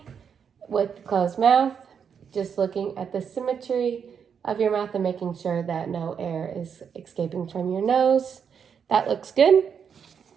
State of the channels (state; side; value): quieter; left; 7.1 dB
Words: with closed mouth, just looking at the symmetry of your mouth and making sure that no air is escaping from your nose. That looks good.